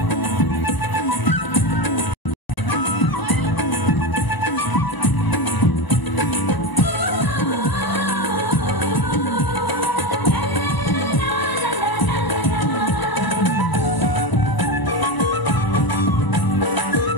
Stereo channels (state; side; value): late; right; 1.0 ms